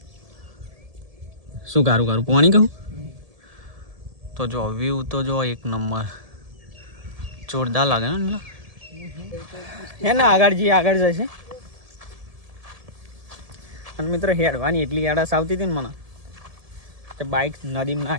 શું કારું પાણી કહું તો જો વ્યૂ તો જો એક નંબર જોરદાર લાગે ને. હે ને આગળ જઈએ, આગળ જશે. અને મિત્રો હેડવાની એટલી આળસ આવતી હતી ને મને કે બાઇક નદીમાં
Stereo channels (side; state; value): left; late; 1.7 ms